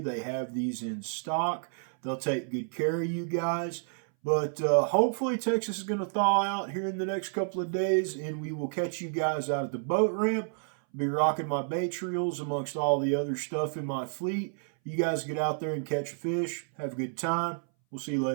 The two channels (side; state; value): left; silent; 58 dB below the other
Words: They have these in stock. They'll take good care of you guys. But hopefully Texas is going to thaw out here in the next couple of days, and we will catch you guys out at the boat ramp. I'll be rocking my Bates reels amongst all the other stuff in my fleet. You guys get out there and catch a fish. Have a good time. We'll see you